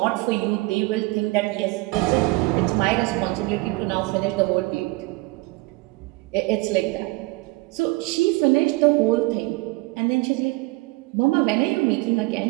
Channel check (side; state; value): left; quieter; 22.9 dB